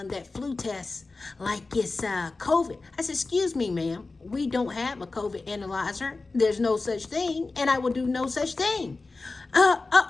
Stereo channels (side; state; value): right; quieter; 3.6 dB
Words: that flu test like it's COVID. I said, excuse me, ma'am. We don't have a COVID analyzer. There's no such thing, and I will do no such thing.